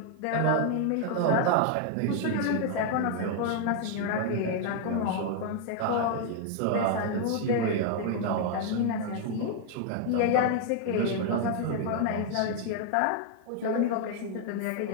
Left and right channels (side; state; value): both; different; correlation 0.00